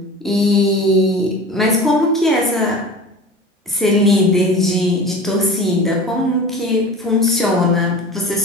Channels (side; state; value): both; normal; correlation 0.36